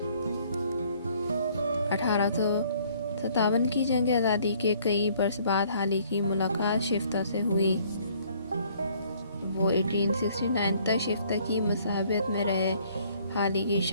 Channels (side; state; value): both; inverted; correlation -0.61